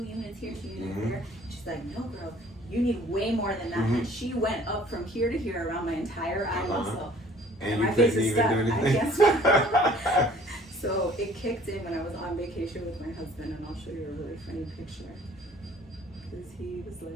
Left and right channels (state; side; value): normal; both; correlation 0.54